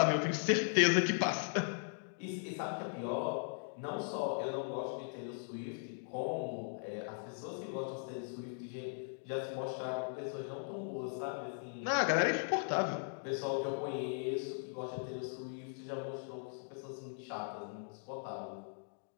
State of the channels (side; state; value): right; silent; digital silence